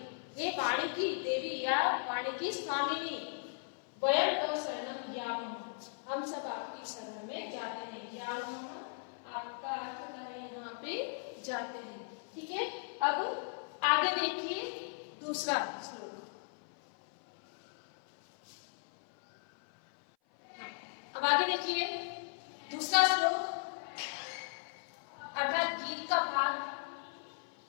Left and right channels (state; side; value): silent; right; 53 dB below the other